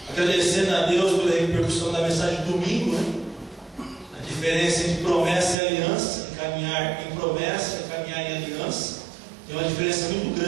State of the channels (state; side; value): drops out; left; at 5.6 s